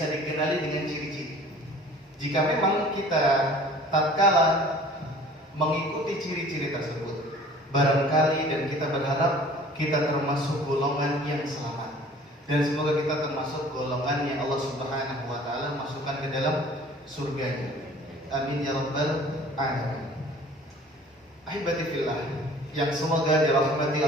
dikenali dengan ciri-ciri. Jika memang kita tatkala mengikuti ciri-ciri tersebut, barangkali dan kita berharap kita termasuk golongan yang selamat, dan semoga kita termasuk golongan yang Allah Subhanahu wa taala masukkan ke dalam surganya. Amin ya rabbal alamin. Ahibati fillah, yang semoga dirahmati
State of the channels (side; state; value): both; normal; correlation 0.48